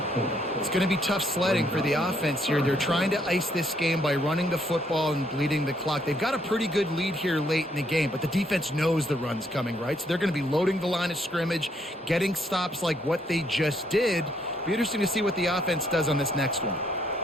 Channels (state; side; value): normal; both; correlation 0.71